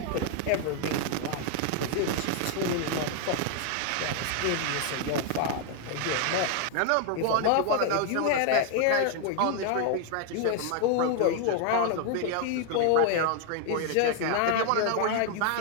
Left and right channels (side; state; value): both; different; correlation 0.00